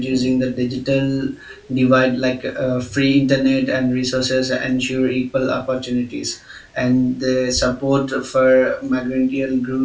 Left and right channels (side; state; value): both; identical; correlation 1.00